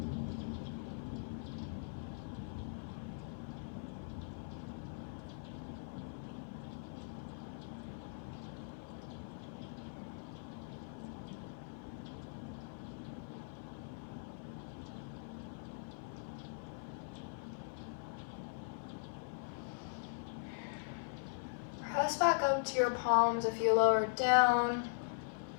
Press back up to your palms if you lower down.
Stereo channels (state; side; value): silent; right; 51 dB below the other